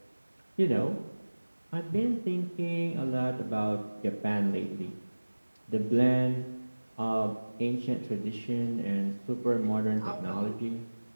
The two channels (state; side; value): inverted; both; correlation -1.00